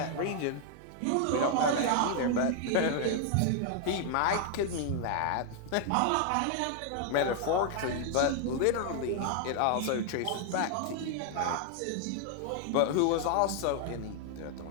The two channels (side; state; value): both; different; correlation 0.00